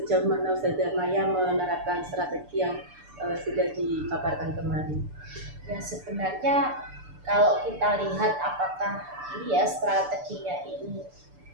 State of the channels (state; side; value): late; left; 6.8 ms